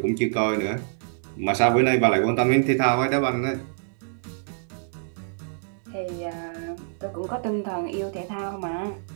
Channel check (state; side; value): silent; left; digital silence